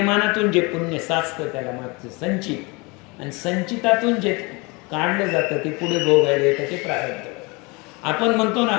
जे पुण्य साचतं त्याला मागचं संचित, आणि संचितातून जे काढलं जातं ते पुढे भोगायला येतं ते प्रारब्ध. आपण म्हणतो ना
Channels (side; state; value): right; quieter; 27.4 dB